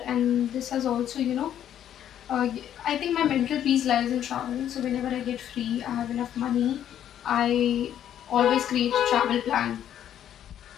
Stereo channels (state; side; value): quieter; right; 10.5 dB